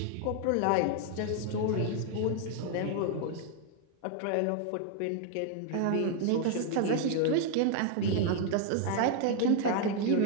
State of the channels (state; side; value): different; both; correlation 0.00